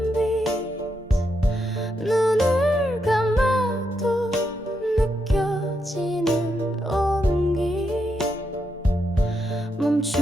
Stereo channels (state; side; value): normal; both; correlation 0.82